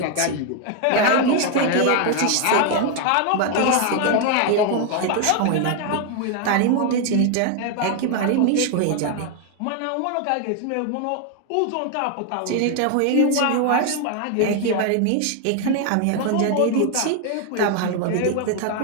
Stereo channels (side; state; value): both; different; correlation 0.01